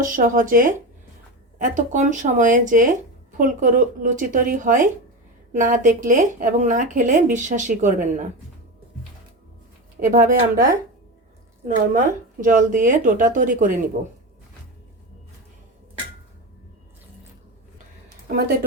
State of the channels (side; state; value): both; normal; correlation 0.20